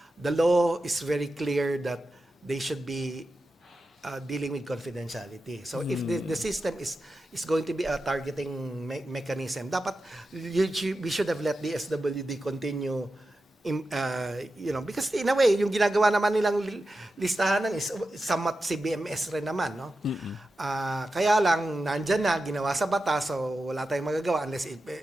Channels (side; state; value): both; normal; correlation 0.91